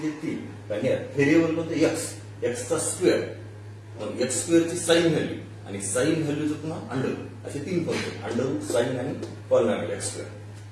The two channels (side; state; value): both; identical; correlation 1.00